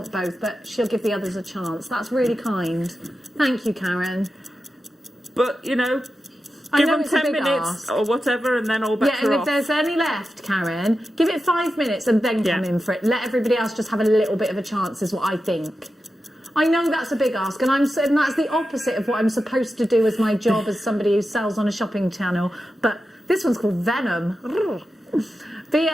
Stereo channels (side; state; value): both; normal; correlation 0.91